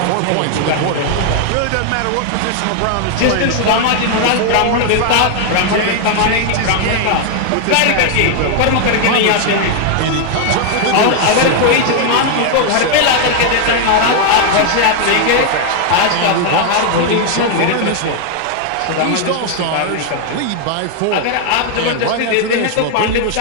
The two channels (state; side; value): different; both; correlation 0.00